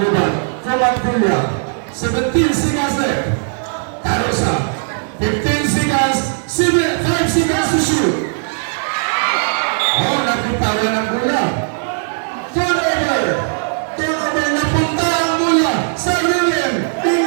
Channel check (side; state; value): left; silent; digital silence